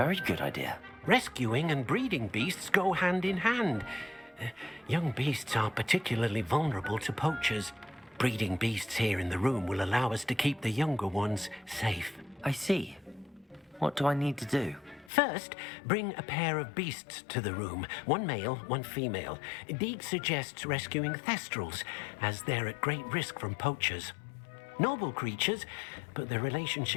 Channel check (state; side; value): drops out; right; at 15.1 s